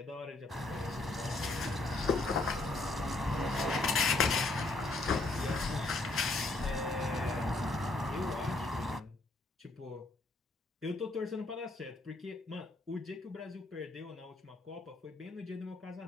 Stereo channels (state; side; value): quieter; right; 3.0 dB